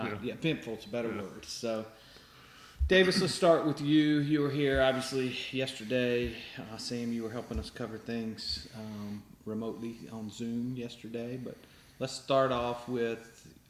Yeah. Eventful is a better word. So, Davis, let's start with you. You were here obviously yesterday. Sam, you were helping us cover things remotely on Zoom yesterday. But let's start off with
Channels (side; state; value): both; identical; correlation 1.00